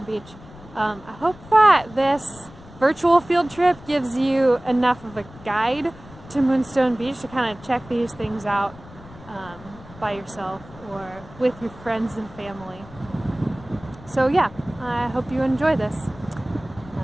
Beach. I hope that this virtual field trip gives you enough of a guide to Moonstone Beach to kind of check these things out by yourself or with your friends and family. So yeah, I hope you enjoy this.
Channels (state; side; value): noise; left; rumble, 19 dB below the sound